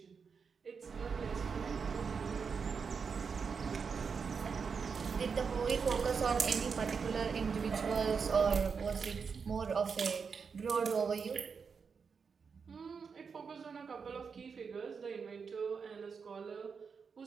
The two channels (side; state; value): left; quieter; 5.8 dB